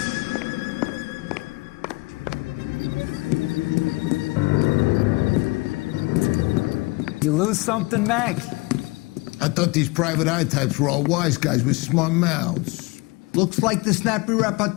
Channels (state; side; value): quieter; right; 24.8 dB